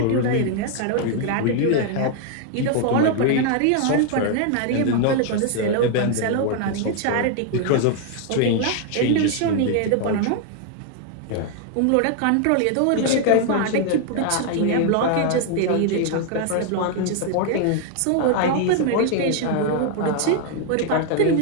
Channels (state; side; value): different; both; correlation 0.00